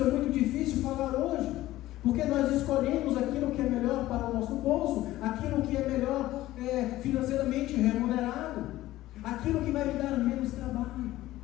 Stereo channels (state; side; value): quieter; right; 15.8 dB